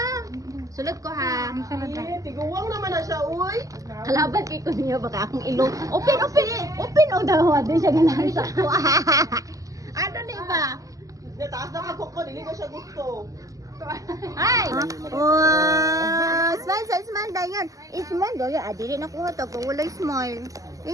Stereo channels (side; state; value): left; late; 0.17 ms